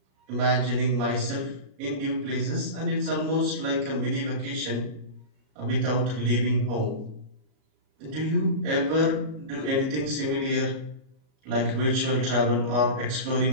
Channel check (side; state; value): left; late; 37 ms